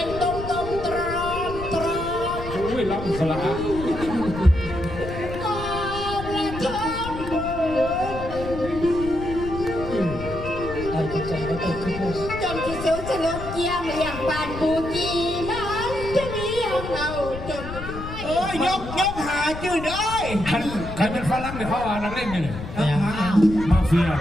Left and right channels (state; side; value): noise; left; rumble, 9 dB below the sound